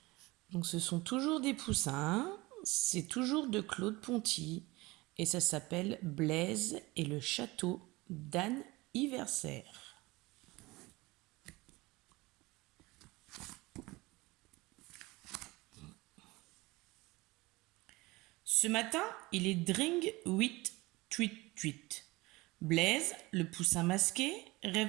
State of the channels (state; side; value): quieter; left; 21.8 dB